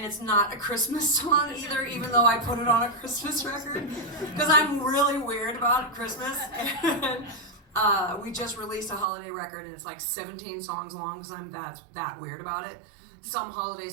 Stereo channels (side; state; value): left; drops out; at 9.1 s